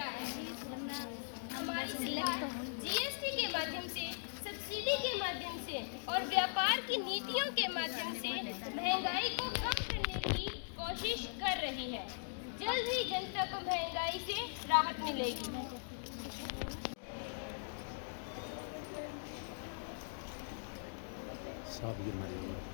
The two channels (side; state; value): right; silent; digital silence